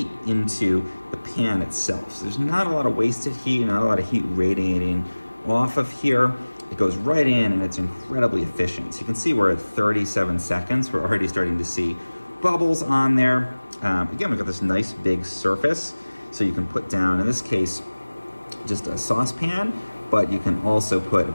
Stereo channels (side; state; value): both; inverted; correlation -1.00